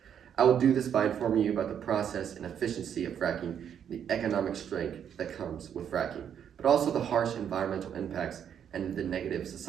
I will do this by informing you about the process and efficiency of fracking and the economic strength that comes with fracking, but also the harsh environmental impacts and the negative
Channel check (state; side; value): quieter; left; 8.7 dB